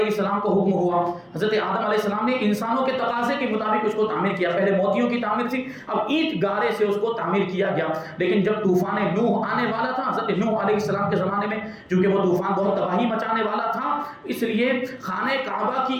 السلام کو حکم ہوا، حضرت آدم علیہ السلام نے انسانوں کے تقاضے کے مطابق اس کو تعمیر کیا. پہلے موتیوں کی تعمیر تھی، اب اینٹ گارے سے اس کو تعمیر کیا گیا. لیکن جب طوفان نوح آنے والا تھا حضرت نوح علیہ السلام کے زمانے میں، چونکہ وہ طوفان بہت تباہی مچانے والا تھا، اس لیے خانہ کعبہ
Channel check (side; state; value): both; identical; correlation 1.00